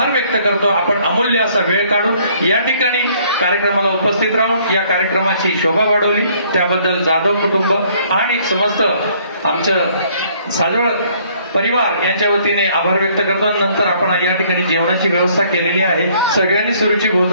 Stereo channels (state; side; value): inverted; both; correlation -0.62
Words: व्यक्त करतो. आपण अमूल्य असा वेळ काढून या ठिकाणी कार्यक्रमाला उपस्थित राहून या कार्यक्रमाची शोभा वाढवली त्याबद्दल जाधव कुटुंब आणि समस्त आमचं साजवळ परिवार यांच्या वतीने आभार व्यक्त करतो. नंतर आपण या ठिकाणी जेवणाची व्यवस्था केलेली आहे. सगळ्यांनी सुरुची